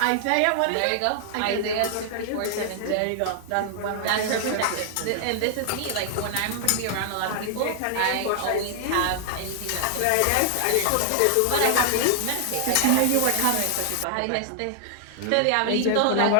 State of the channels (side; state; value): both; different; correlation 0.00